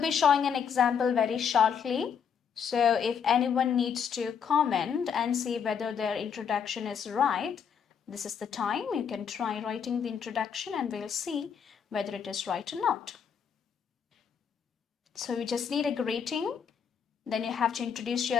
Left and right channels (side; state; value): right; quieter; 7.2 dB